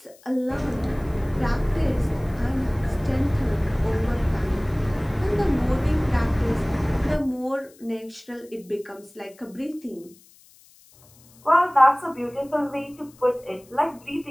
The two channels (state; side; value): noise; left; hiss, 27 dB below the sound